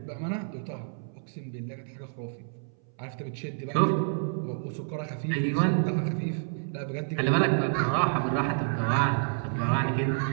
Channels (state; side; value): silent; left; 59 dB below the other